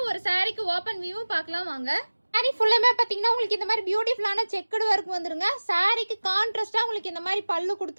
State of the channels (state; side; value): inverted; both; correlation -1.00